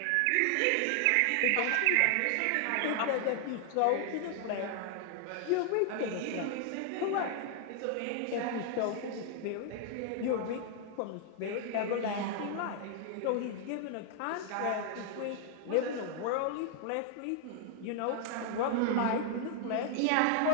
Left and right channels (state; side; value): different; both; correlation 0.00